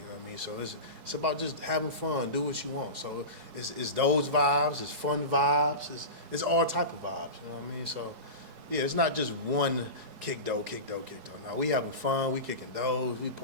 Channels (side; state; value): left; late; 4.7 ms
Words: know what I mean? So it's about just having fun, do what you want. So it's those vibes, it's fun vibes, it's all type of vibes. You know what I mean? So. Yeah, it's not just one kickdoor. Now we having fun, we kicking doors, we